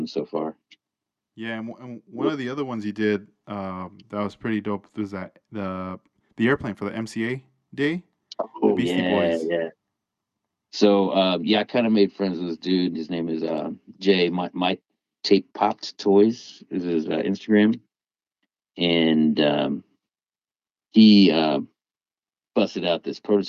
so far. Yeah, and one of the other ones you did that was pretty dope was that the airplane for the MCA day, the Oh Beastie yeah, Boys. yeah. So yeah, I kind of made friends with this dude. His name is Jay. My tape popped toys is his Instagram, and he busted out this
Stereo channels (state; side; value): identical; both; correlation 1.00